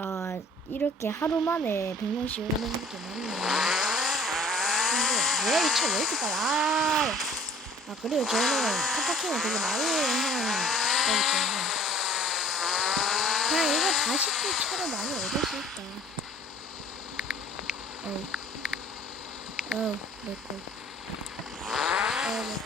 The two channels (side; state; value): both; normal; correlation 0.51